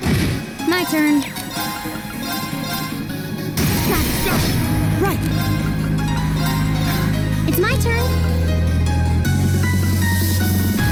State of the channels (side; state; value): both; identical; correlation 1.00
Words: My turn. Got it. Go. Right. It's my turn.